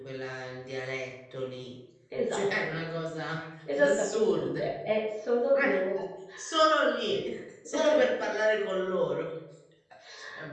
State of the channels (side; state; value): both; identical; correlation 1.00